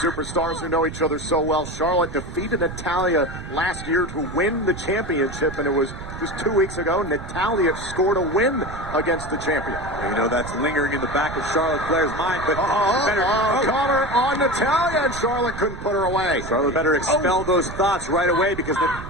who know each other so well. Charlotte defeated Natalya last year to win the championship, and it was just 2 weeks ago. Natalya scored a win against the champion. Well, you know, that's lingering in the back of Charlotte Flair's mind, but Connor on Natalya, and Charlotte couldn't put her away. Charlotte better expel those thoughts right away because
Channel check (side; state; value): right; noise; rumble, 10 dB below the sound